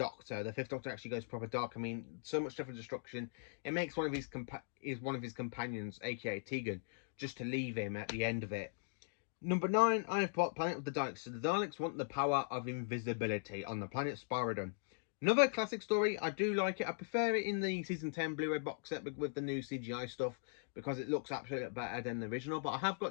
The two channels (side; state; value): right; silent; digital silence